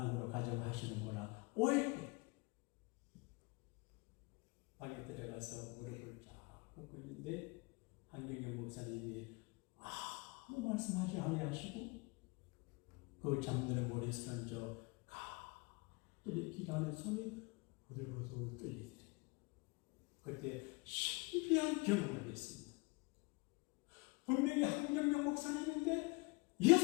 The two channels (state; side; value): quieter; right; 27.9 dB